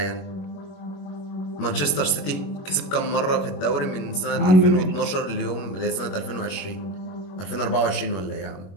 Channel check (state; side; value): late; right; 22 ms